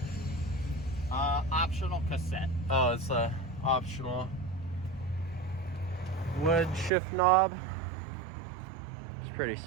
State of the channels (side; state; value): left; drops out; at 6.9 s